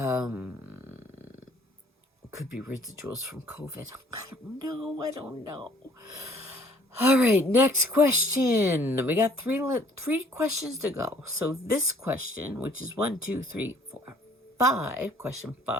could be residuals from COVID. I don't know. I don't know. All right, next question. We got three questions to go. So this question, which is 1, 2, 3, 4, 5, question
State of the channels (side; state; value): both; normal; correlation 0.58